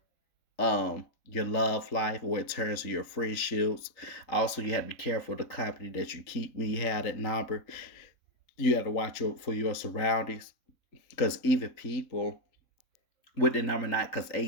your love life, or in terms of your friendships. Also, you have to be careful of the company that you keep when you have that number. You have to watch for your surroundings, because even people with the number nine, because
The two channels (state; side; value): late; right; 3.8 ms